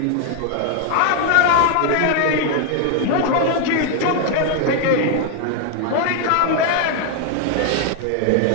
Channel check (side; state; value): both; different; correlation 0.00